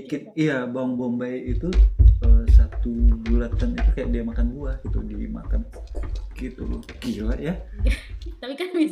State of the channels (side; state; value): both; identical; correlation 1.00